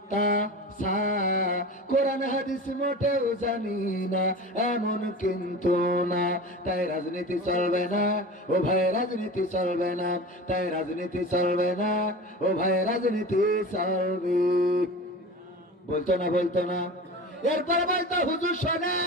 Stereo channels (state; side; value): normal; both; correlation 0.33